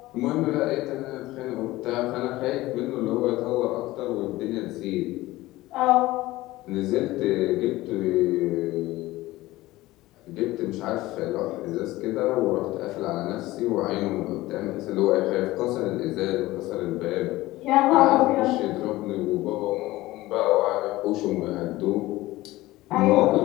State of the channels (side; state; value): right; quieter; 18.0 dB